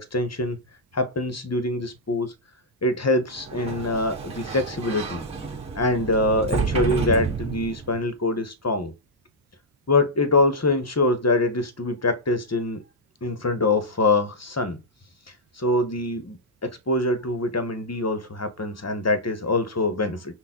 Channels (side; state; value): both; normal; correlation -0.07